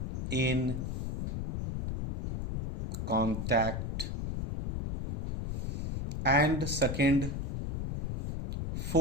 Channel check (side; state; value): left; noise; rumble, 3 dB below the sound